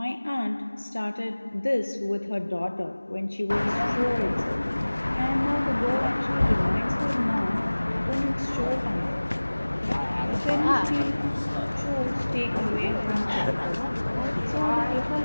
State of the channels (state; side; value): inverted; both; correlation -1.00